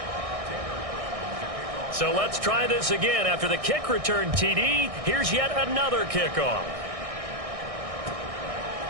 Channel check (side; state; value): left; late; 1.6 ms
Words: So let's try this again. After the kick return TD, here's yet another kickoff.